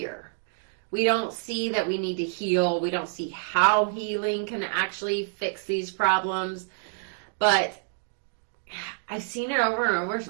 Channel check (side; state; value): left; silent; digital silence